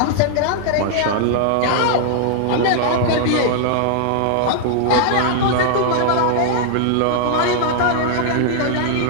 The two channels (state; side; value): different; both; correlation -0.01